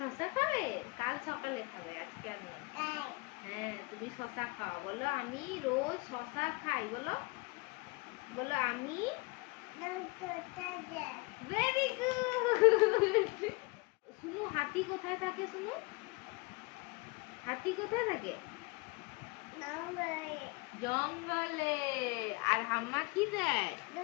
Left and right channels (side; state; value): right; quieter; 25.9 dB